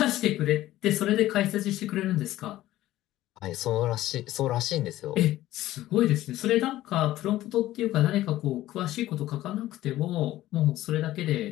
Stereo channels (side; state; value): right; quieter; 15.0 dB